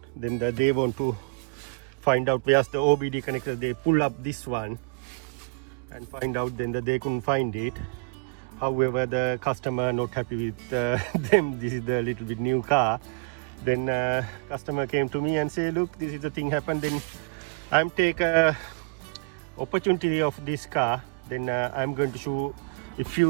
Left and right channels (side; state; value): left; quieter; 35.5 dB